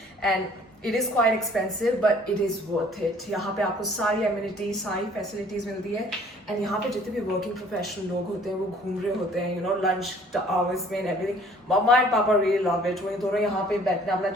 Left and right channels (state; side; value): normal; both; correlation 0.56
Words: and it is quite expensive, but it is worth it. यहाँ पे आपको सारी amenities, सारी facilities मिलती है, and यहाँ पे जितने भी working professional लोग होते हैं वो घूम रहे होते हैं, you know, lunch hours में and everything. Mama and Papa really love it. वो दोनों यहाँ पे बैठते हैं, अपना